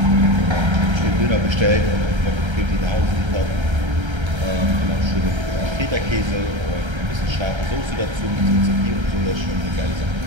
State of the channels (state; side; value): late; left; 1.3 ms